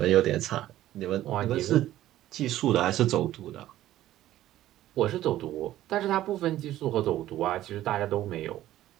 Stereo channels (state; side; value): quieter; left; 13.9 dB